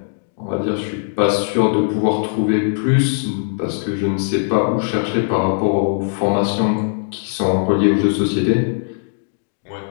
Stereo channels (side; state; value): right; silent; digital silence